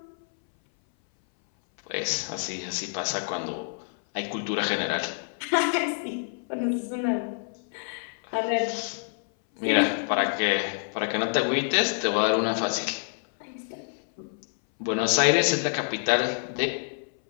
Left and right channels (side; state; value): right; silent; 59 dB below the other